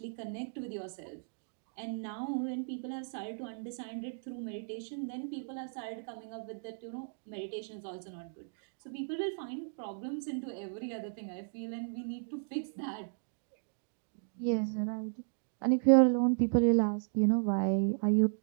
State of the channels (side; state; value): left; silent; digital silence